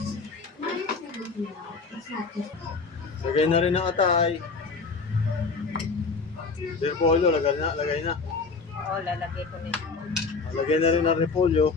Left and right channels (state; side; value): quieter; right; 4.4 dB